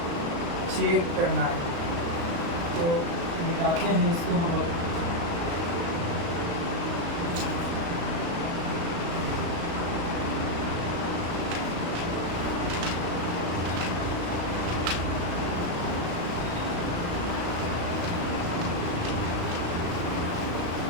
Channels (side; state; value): left; late; 35 ms